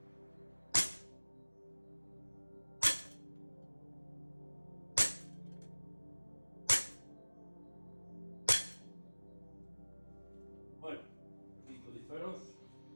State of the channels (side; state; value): both; inverted; correlation -1.00